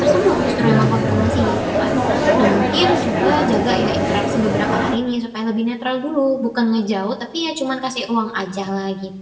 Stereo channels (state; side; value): identical; both; correlation 1.00